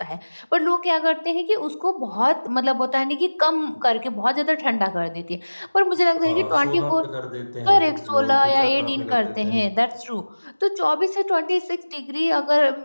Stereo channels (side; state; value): both; inverted; correlation -1.00